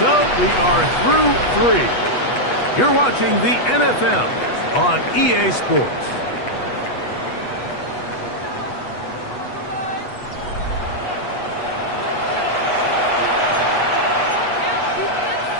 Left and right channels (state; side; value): late; right; 8.2 ms